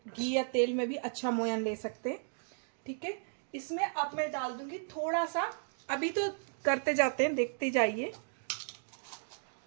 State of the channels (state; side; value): silent; left; digital silence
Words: घी या तेल में भी अच्छा मोयन ले सकते हैं, ठीक है। इसमें अब मैं डाल दूंगी थोड़ा सा, अभी तो करते जाते हैं, देखते जाइए।